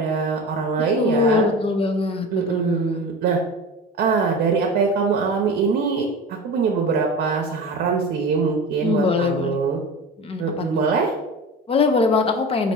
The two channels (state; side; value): normal; both; correlation 0.31